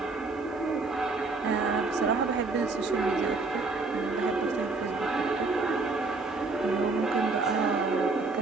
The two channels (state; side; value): quieter; left; 3.7 dB